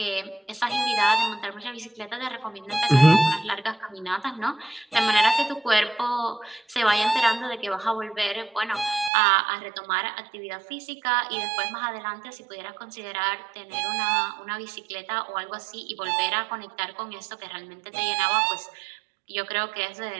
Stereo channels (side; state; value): left; drops out; at 9.1 s